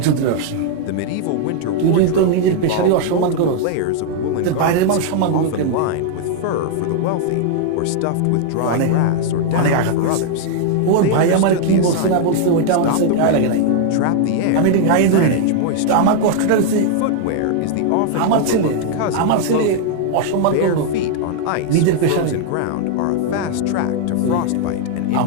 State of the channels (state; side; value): different; both; correlation 0.00